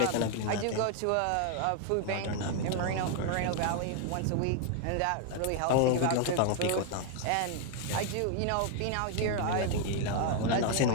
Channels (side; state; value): both; different; correlation 0.00